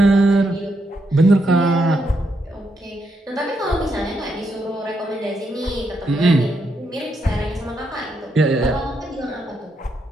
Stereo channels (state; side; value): normal; both; correlation 0.80